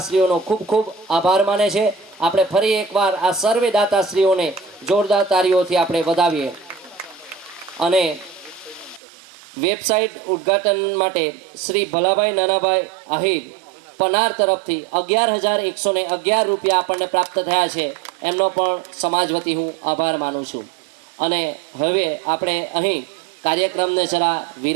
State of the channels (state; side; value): drops out; left; at 9.0 s